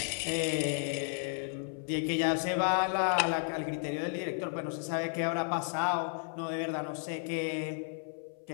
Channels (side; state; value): right; silent; 56 dB below the other